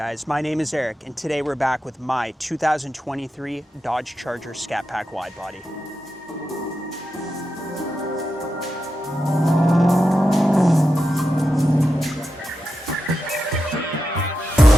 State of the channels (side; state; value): both; normal; correlation 0.89